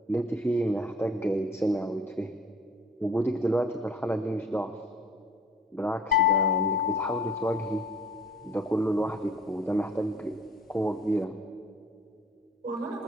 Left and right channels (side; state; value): both; normal; correlation 0.53